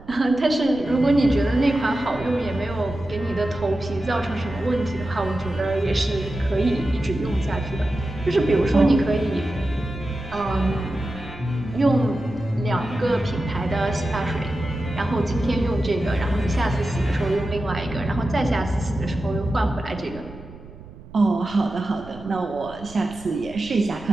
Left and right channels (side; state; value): right; noise; rumble, 18 dB below the sound